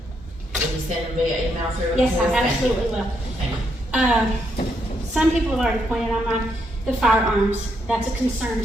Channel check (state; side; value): normal; both; correlation 0.77